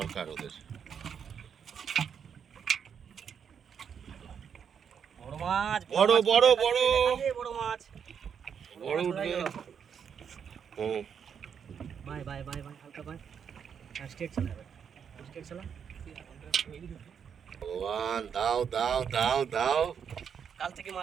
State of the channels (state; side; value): quieter; left; 7.4 dB